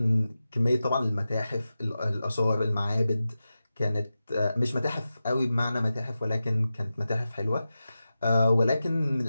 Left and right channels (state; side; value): inverted; both; correlation -0.93